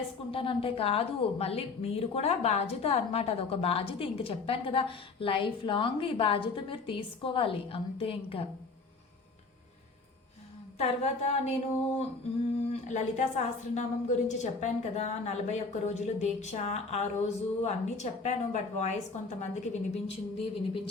కాదు, మళ్ళీ మీరు కూడా బాధ్యత అనమాట. అదొక బాధ్యత. ఇంక చెప్పాను కదా, లైఫ్ లాంగ్ ఈ బాధ్యత మీరు తీసుకోవాలి అంతే. ఇంకా తర్వాత నేను లలితా సహస్రనామం గురించి చెప్పాను కదా, 41 రోజులు దీక్ష. ఆ రోజు అన్నీ చెప్పాను, బట్ వాయిస్ కొంతమందికి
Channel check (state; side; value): quieter; right; 4.1 dB